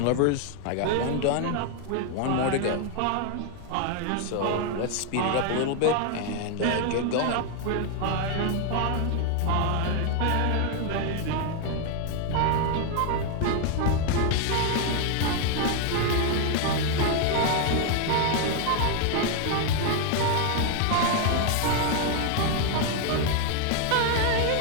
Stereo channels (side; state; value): both; different; correlation 0.00